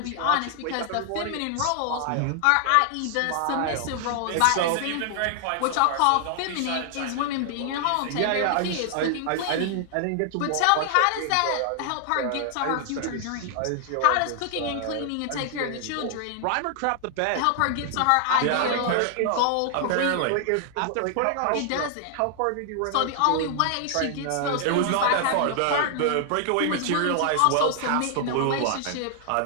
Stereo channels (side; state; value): both; different; correlation 0.00